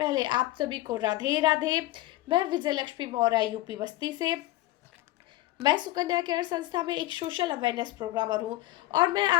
आप सभी को राधे राधे। मैं विजय लक्ष्मी मौर्य यूपी बस्ती से। मैं सुकन्या केयर संस्था में एक सोशल अवेयरनेस प्रोग्रामर हूँ और मैं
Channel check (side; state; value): right; quieter; 16.9 dB